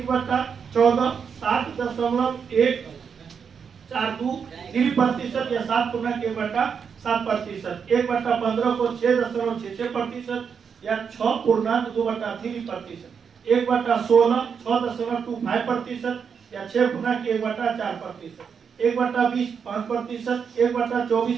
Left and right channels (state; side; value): quieter; left; 6.6 dB